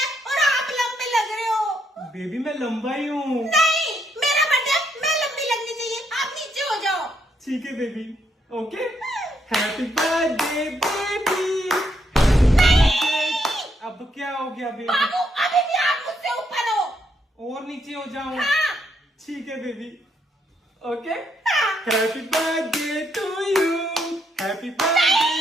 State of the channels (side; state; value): both; normal; correlation 0.76